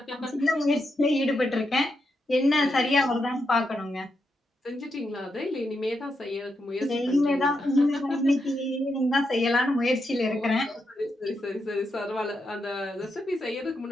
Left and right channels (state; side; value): normal; both; correlation 0.84